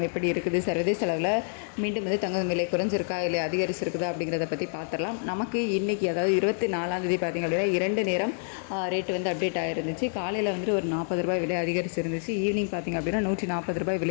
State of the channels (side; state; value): right; silent; digital silence